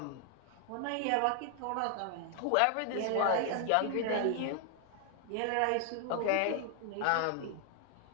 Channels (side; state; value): both; different; correlation 0.00